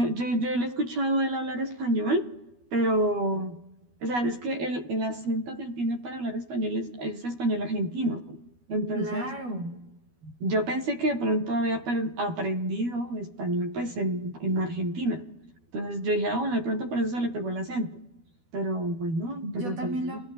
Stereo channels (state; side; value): late; left; 12 ms